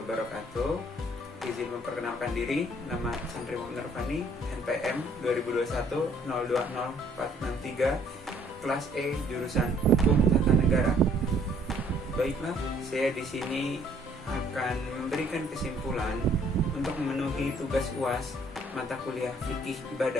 wabarakatuh. Izin memperkenalkan diri, nama Santri Muhammad Nurfani, NPM 2021-020463, kelas E, jurusan Hukum Tata Negara. Baiklah, saya di sini akan memberikan kesimpulan untuk memenuhi tugas UAS mata kuliah fikih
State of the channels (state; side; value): normal; both; correlation 0.61